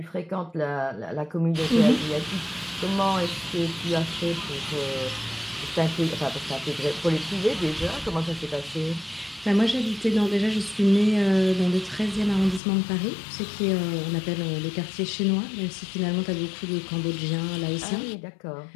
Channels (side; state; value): right; drops out; at 12.6 s